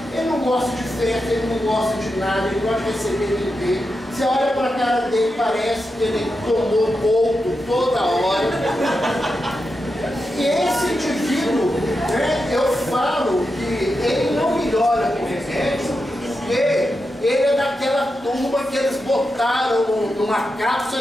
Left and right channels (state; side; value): normal; both; correlation 0.88